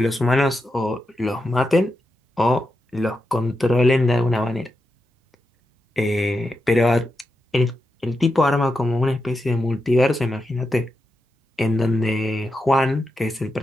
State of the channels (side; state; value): both; normal; correlation 0.87